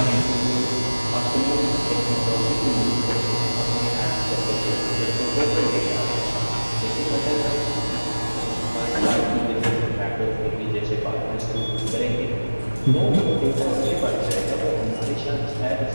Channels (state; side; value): inverted; both; correlation -1.00